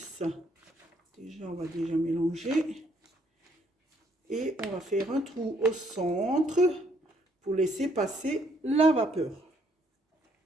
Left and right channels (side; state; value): both; normal; correlation 0.68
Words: Déjà, on va déjà mélanger. Et on va faire un trou au centre pour laisser passer la vapeur.